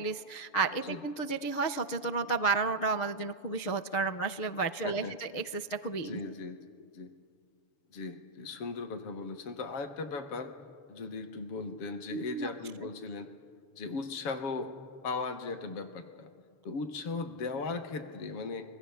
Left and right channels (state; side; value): late; right; 7.0 ms